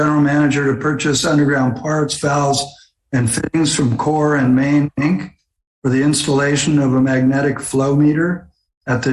manager to purchase underground parts, valves, and fittings from Core and Main, Inc. for the installation of a magnetic flow meter at the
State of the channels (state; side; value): identical; both; correlation 1.00